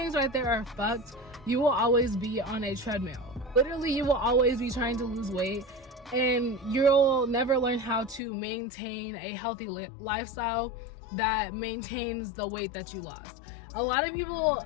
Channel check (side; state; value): right; drops out; at 8.2 s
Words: right there are fucked, you will always be on a treadmill. Literally, you will always be trying to lose weight, and you'll never learn how to maintain a healthy lifestyle that maintains the weight that you lost. A lot of people